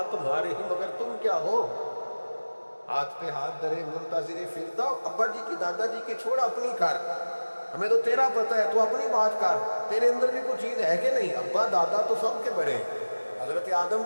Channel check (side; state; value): both; inverted; correlation -1.00